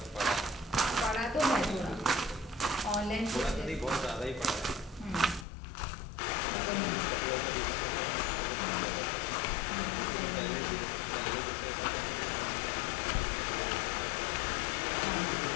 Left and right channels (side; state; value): right; drops out; at 5.5 s